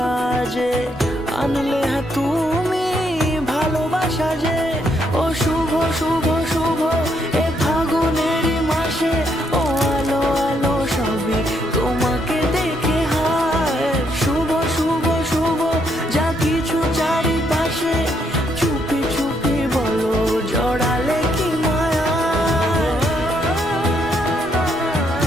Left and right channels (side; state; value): left; noise; rumble, 21 dB below the sound